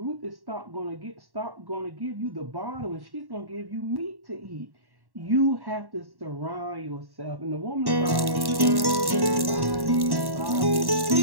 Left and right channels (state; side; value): late; left; 1.1 ms